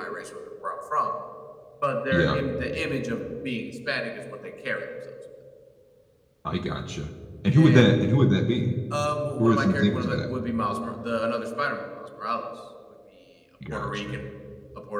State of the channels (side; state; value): both; identical; correlation 1.00